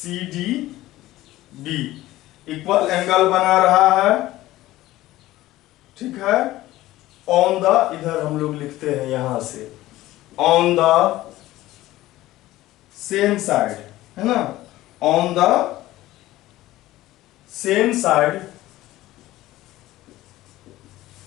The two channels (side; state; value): right; quieter; 16.3 dB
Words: Equal angle बना रहा है, ठीक है, ऑन द, इधर हम लोग लिखते हैं यहां से, ऑन द सेम साइड, है ना, on the same side